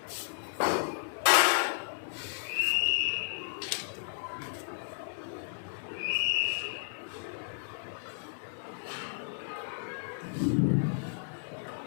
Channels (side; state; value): right; silent; 56 dB below the other